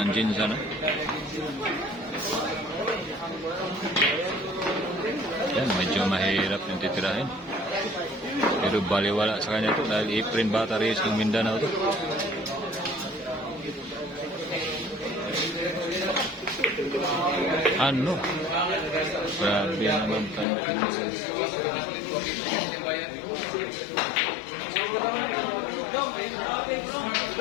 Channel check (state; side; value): drops out; right; at 20.5 s